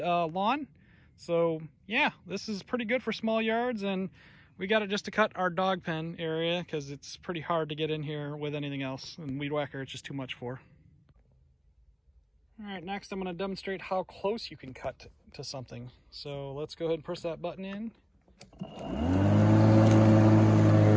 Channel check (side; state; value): both; identical; correlation 1.00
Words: So yeah, this is pretty good for small yards, and we got it just to cut our dog pen area because it's pretty hard to get in here with anything else, and weed whacker it's just too much for. All right, next I'm going to demonstrate how close you can cut to something. So let's go ahead and press that button in.